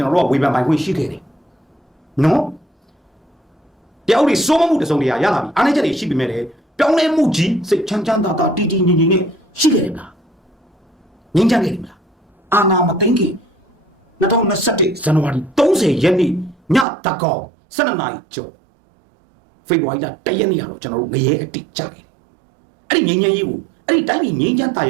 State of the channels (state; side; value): drops out; left; at 16.9 s